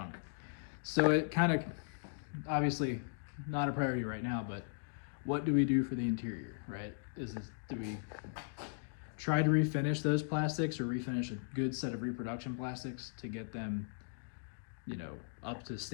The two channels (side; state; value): right; silent; digital silence